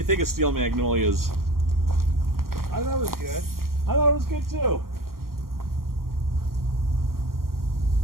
think of Steel Magnolias? I thought it was good. I thought it was good too.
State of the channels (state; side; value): late; left; 0.92 ms